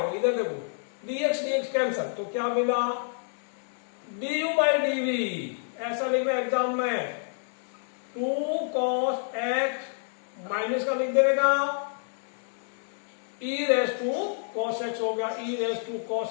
इधर देखो dx कैंसल, तो क्या मिला du बाई dv, ऐसा लिखना एग्जाम में 2 cos x माइनस का लिख देने का e raise to cos x हो गया, e raise to cos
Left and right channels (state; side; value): silent; right; 59 dB below the other